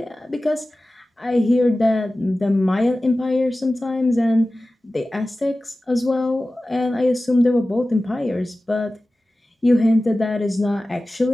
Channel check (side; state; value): both; normal; correlation 0.96